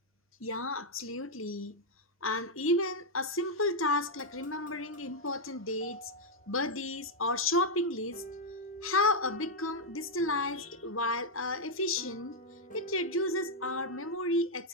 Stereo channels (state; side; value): normal; both; correlation -0.01